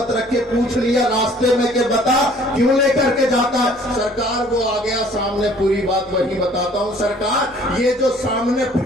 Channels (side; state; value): left; noise; hum, 28 dB below the sound